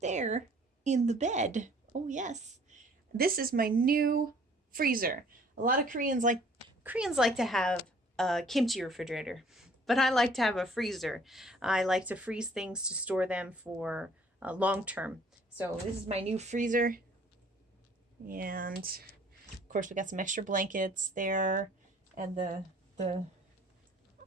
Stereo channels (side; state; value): both; normal; correlation 0.56